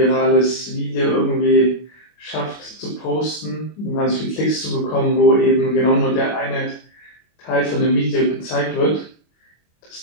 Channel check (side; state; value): right; late; 25 ms